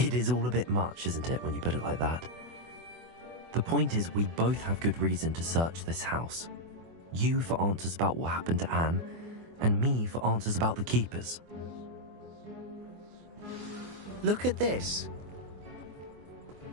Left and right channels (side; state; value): left; late; 24 ms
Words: is all a bit much, isn't it, when you put it like that? The point is, we both have good reason to search this house. You for answers about what happened to Anne, and me for answers about the keepers. Look at this.